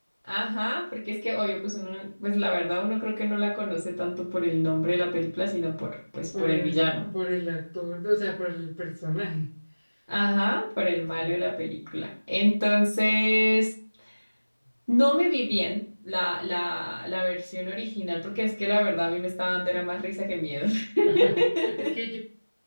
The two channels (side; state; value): both; inverted; correlation -1.00